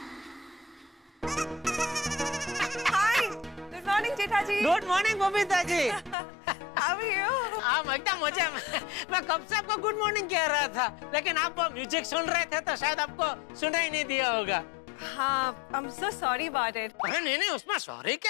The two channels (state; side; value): drops out; right; at 6.2 s